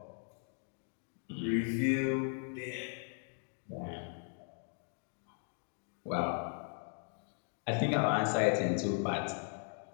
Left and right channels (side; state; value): right; silent; 53 dB below the other